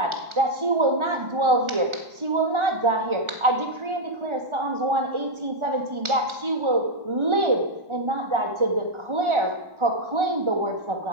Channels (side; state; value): left; late; 1.4 ms